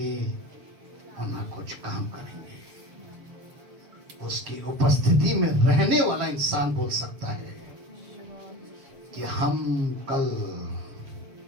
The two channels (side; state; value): left; late; 7.1 ms